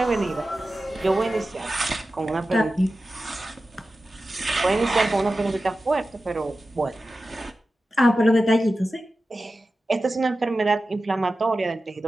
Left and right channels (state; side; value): normal; both; correlation 0.94